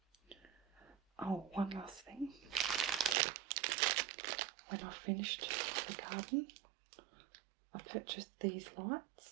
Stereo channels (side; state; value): left; drops out; at 3.2 s